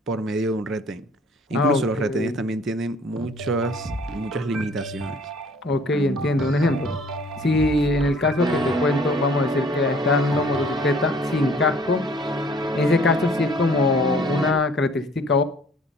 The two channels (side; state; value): both; normal; correlation 0.55